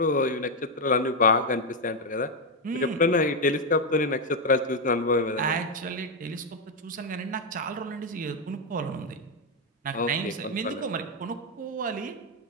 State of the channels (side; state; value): both; normal; correlation 0.03